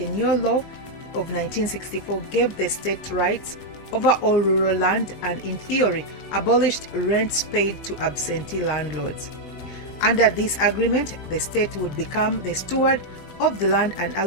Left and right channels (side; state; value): right; late; 21 ms